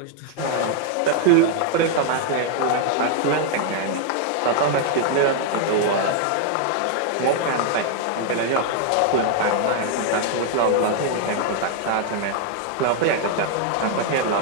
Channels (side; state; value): both; different; correlation 0.00